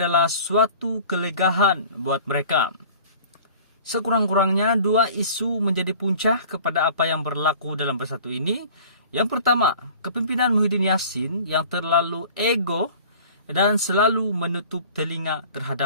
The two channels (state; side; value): inverted; both; correlation -0.46